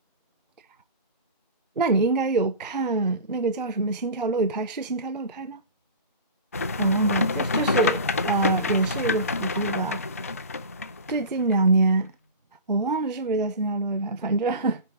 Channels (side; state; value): both; inverted; correlation -0.31